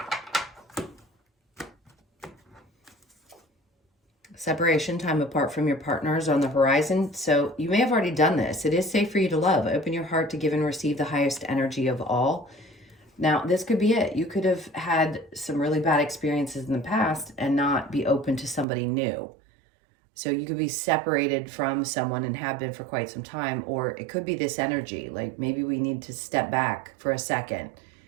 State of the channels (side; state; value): left; drops out; at 18.7 s